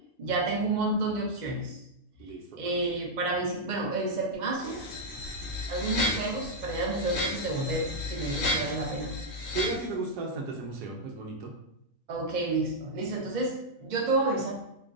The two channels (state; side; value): normal; both; correlation -0.05